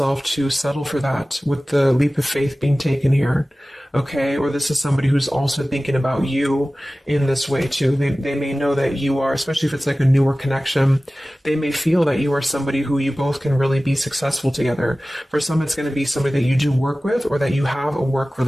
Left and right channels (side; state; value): both; normal; correlation 0.97